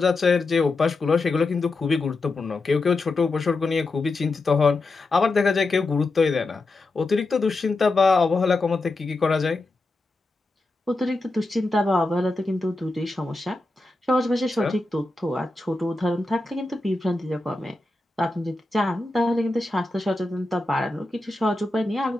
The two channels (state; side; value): quieter; right; 3.1 dB